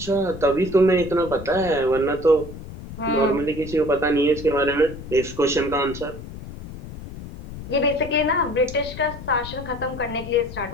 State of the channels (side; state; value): left; noise; rumble, 12 dB below the sound